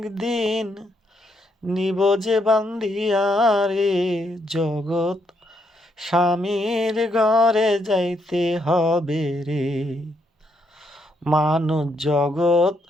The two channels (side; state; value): both; normal; correlation 0.76